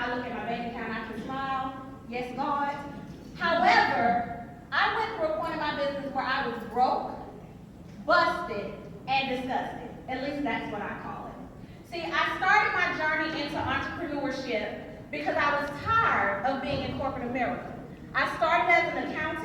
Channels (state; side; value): identical; both; correlation 1.00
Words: I look at my bank account, I can smile, yes, God. However, I went through a point in my business where I was broke, busted, and disgusted. At least that's what I call it. See, I started my journey into entrepreneurship because I was tired of being in corporate America. I started as an